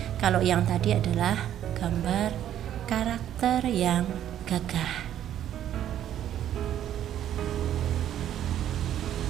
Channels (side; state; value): left; quieter; 11.0 dB